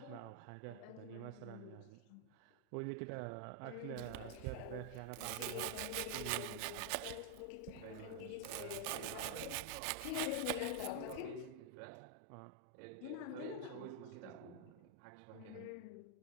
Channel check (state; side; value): different; both; correlation 0.00